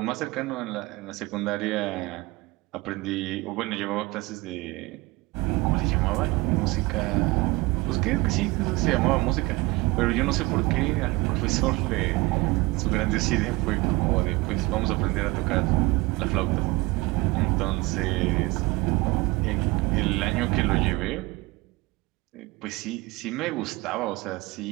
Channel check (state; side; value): quieter; left; 22.9 dB